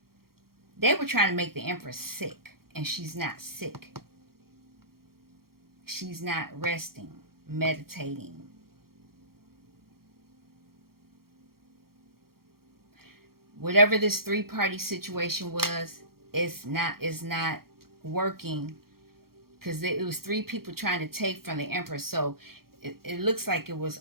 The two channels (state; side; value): late; left; 0.94 ms